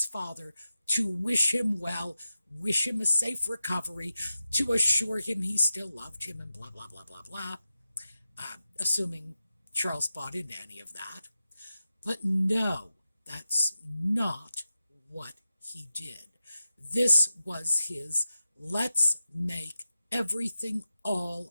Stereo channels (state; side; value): inverted; both; correlation -0.91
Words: father to wish him well, wish him a safe recovery, to assure him he still loved him and blah, blah, blah, blah, blah, assuming Charles bought into any of that. But no, that's not what he did. This was his let's make everything